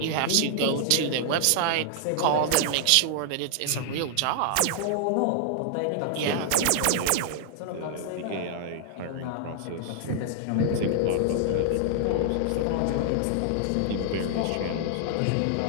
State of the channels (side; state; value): both; different; correlation -0.01